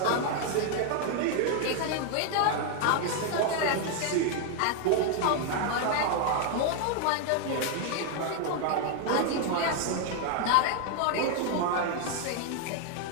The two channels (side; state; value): both; different; correlation 0.01